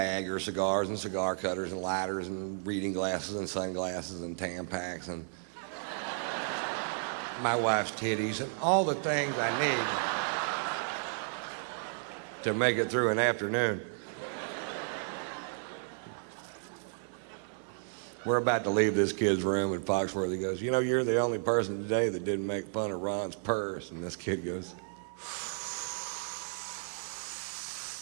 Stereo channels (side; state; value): left; silent; digital silence